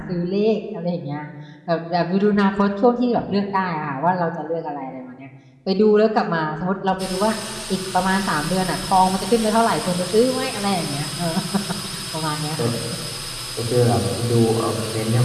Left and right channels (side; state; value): both; identical; correlation 1.00